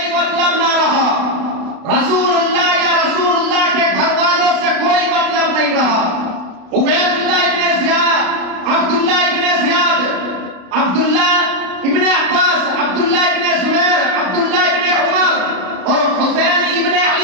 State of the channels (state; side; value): late; left; 32 ms